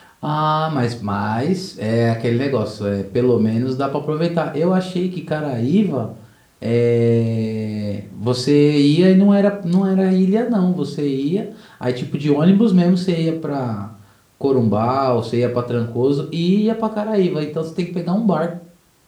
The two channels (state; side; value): identical; both; correlation 1.00